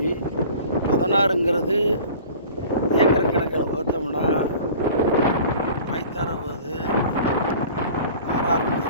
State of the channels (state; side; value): inverted; both; correlation -0.44